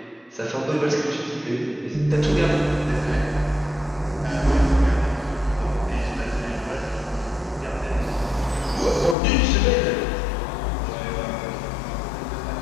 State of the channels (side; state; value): right; drops out; at 9.2 s